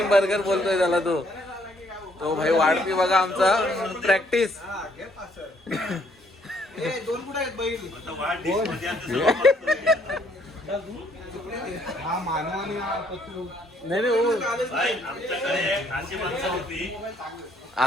बर्गर बोलतोय त्याला तो भाई वाढपी बघा आमचा प्रॅक्टिस नाही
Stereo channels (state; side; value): normal; both; correlation 0.67